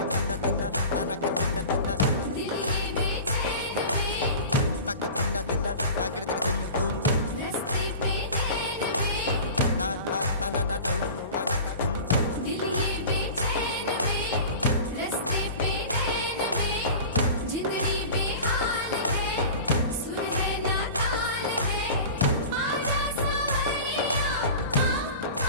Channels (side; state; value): both; inverted; correlation -0.36